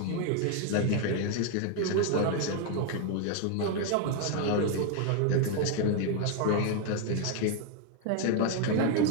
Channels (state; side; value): different; both; correlation 0.01